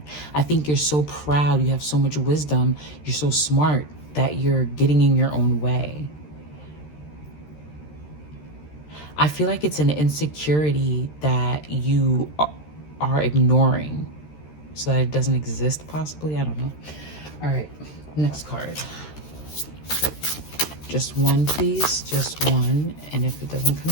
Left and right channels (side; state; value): right; late; 13 ms